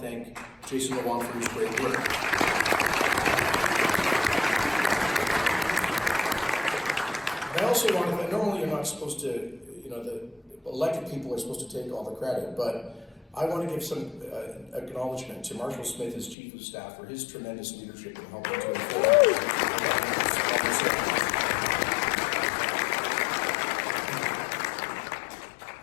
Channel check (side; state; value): right; drops out; at 16.4 s